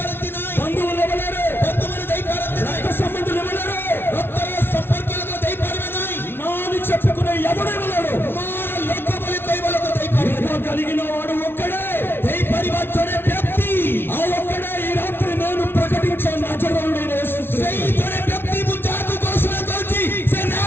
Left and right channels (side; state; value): right; late; 0.11 ms